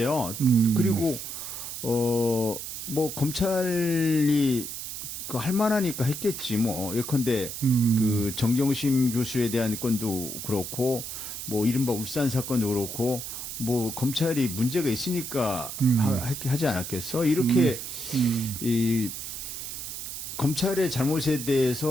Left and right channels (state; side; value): noise; right; hiss, 7 dB below the sound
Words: 그리고 뭐 검찰이 그 할 만하니까 했겠지 뭐 예컨대 그 정경심 교수에 대한 건도 그렇고 뭐 이른바 울산 사건도 그렇고 뭐 검찰이 문제가 있으니까 하지 않았겠어? 이렇게 이 검찰의 잘못에